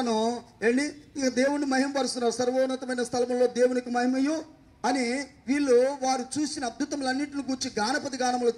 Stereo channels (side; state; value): both; identical; correlation 1.00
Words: ఇక దేవుణ్ణి మహిమపరుస్తున్నారు. సర్వోన్నతమైన స్థలంలో దేవునికి మహిమయు అని వీళ్ళు వారు చూసిన అద్భుతములన్నింటిని కూర్చి గానపతి గానములు